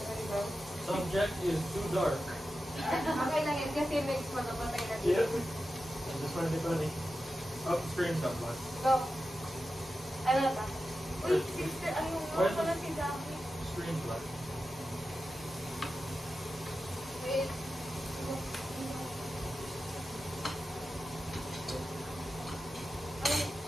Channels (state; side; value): normal; both; correlation 0.92